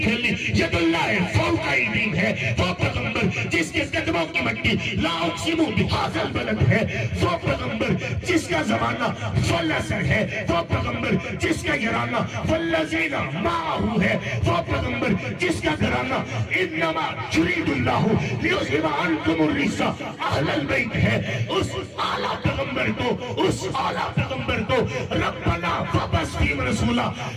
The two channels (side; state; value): both; identical; correlation 1.00